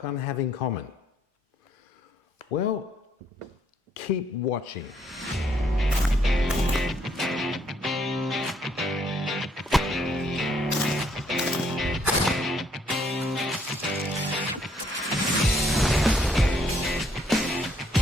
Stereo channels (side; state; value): both; normal; correlation 0.69